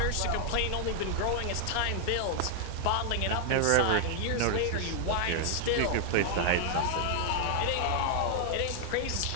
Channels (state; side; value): different; both; correlation 0.00